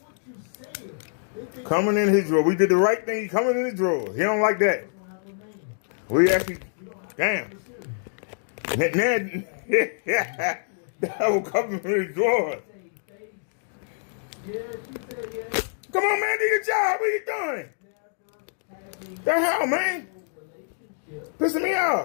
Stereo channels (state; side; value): silent; right; digital silence